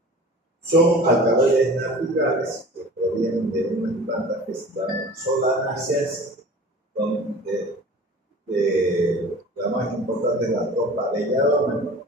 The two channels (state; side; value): normal; both; correlation 0.41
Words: son alcaloides naturales que provienen de unas plantas que se llaman solanáceas, donde la más importante es la tropa belladona,